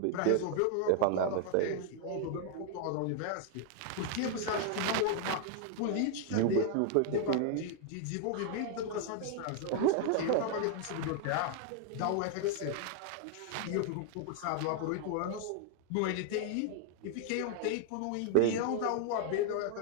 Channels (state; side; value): different; both; correlation 0.00